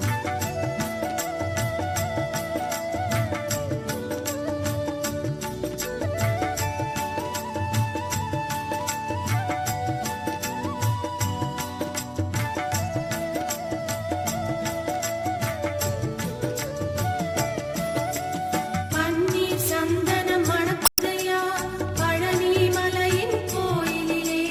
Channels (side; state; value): both; identical; correlation 1.00